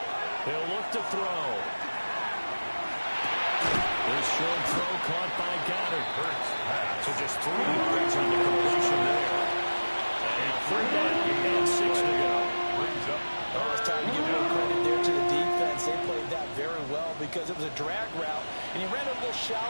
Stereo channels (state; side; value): inverted; both; correlation -1.00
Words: He'll look to throw. This short throw caught by Goddard. So just 3 yards on the completion there. And 3rd down and 6 to go. Brings up. Well, it's time to give more credit there to the defense. They played that very well because it was a drag route, and he ran a little